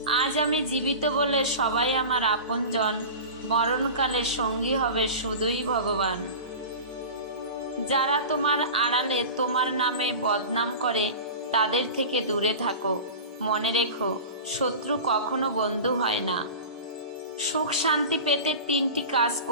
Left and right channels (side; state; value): both; inverted; correlation -0.32